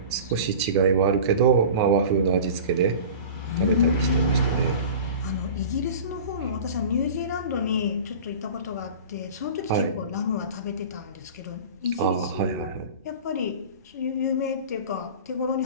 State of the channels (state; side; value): inverted; both; correlation -0.37